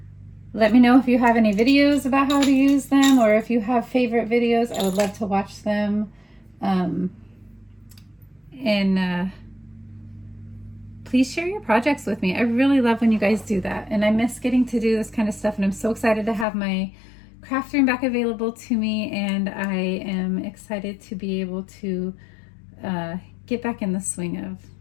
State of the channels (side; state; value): right; drops out; at 16.4 s